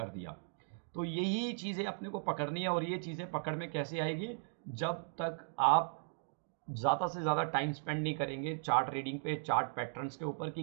दिया। तो यही चीज़ें अपने को पकड़नी है, और ये चीज़ें पकड़ में कैसे आएगी, जब तक आप ज़्यादा से ज़्यादा टाइम स्पेंड नहीं करेंगे चार्ट रीडिंग पे, चार्ट पैटर्न्स के ऊपर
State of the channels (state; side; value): silent; left; digital silence